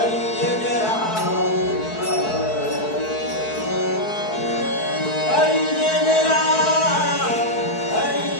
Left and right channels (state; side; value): late; right; 4.6 ms